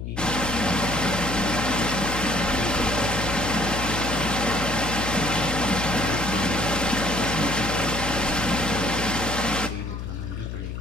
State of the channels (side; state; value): left; noise; hum, 6 dB below the sound